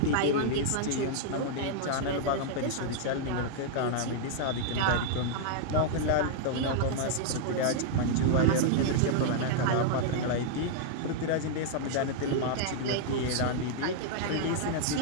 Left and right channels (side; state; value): both; different; correlation -0.01